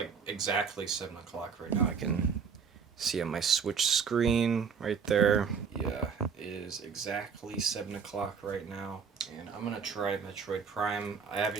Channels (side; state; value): left; quieter; 6.2 dB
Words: exactly 7 o'clock right now. I can See on my Switch screen right there. Yeah, it is exactly 7 o'clock right now. And I'm gonna try Metroid Prime. I